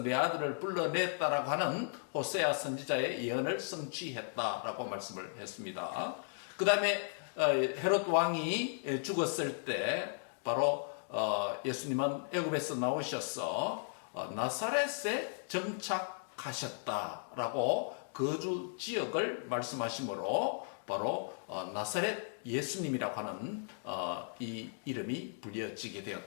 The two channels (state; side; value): silent; right; digital silence